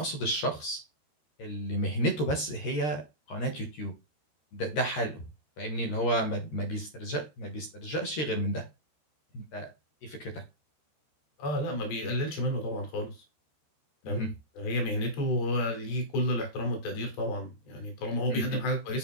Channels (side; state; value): right; late; 13 ms